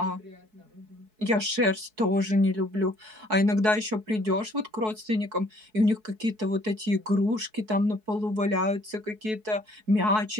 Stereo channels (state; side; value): late; left; 4.7 ms